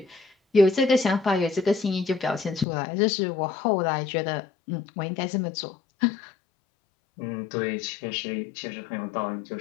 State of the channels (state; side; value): drops out; right; at 2.7 s